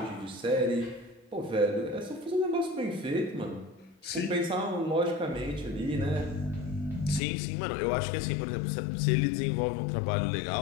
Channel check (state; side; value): drops out; right; at 7.2 s